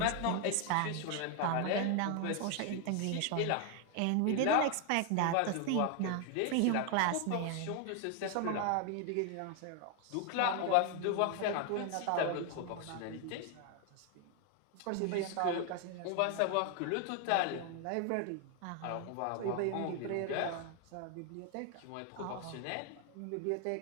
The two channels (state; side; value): different; both; correlation 0.01